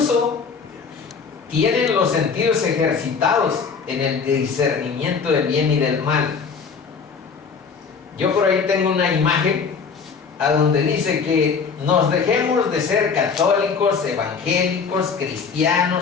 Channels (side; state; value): right; quieter; 5.6 dB